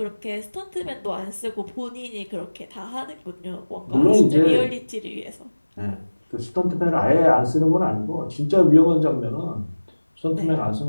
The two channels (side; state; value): both; inverted; correlation -1.00